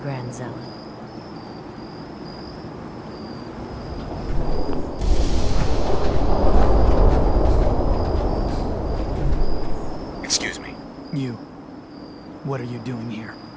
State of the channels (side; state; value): both; identical; correlation 1.00